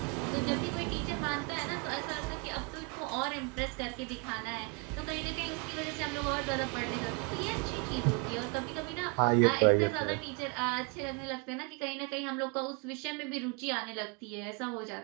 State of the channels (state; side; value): quieter; left; 31.9 dB